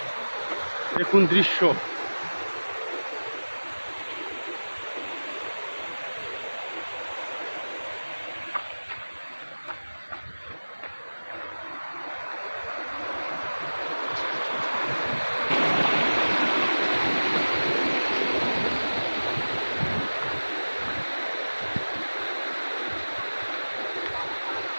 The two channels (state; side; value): inverted; both; correlation -1.00